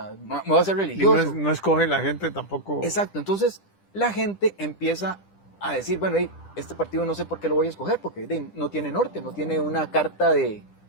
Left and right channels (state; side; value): late; right; 10 ms